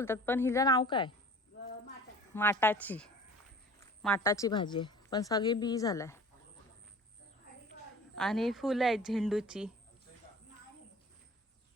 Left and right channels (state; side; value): normal; both; correlation 0.44